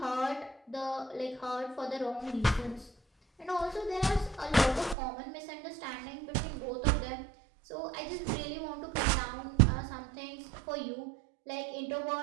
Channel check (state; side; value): drops out; left; at 5.0 s